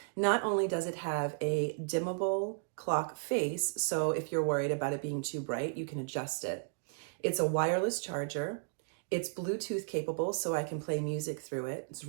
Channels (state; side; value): silent; left; digital silence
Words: Not only does it have a dimmable clock face, so if you're worried about it being too bright, you can adjust it. It's a wireless charger. It's Bluetooth capable, so I can play music through it. It's